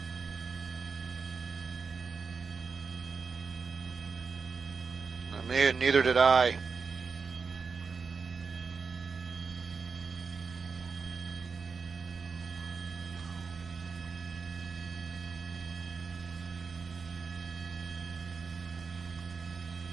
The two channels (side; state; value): left; quieter; 5.2 dB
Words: Neither did I.